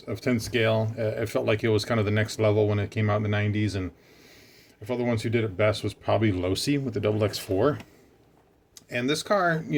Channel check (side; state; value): both; identical; correlation 1.00